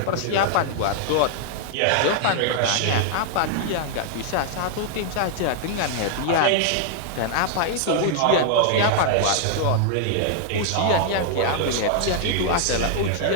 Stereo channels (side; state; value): both; different; correlation 0.00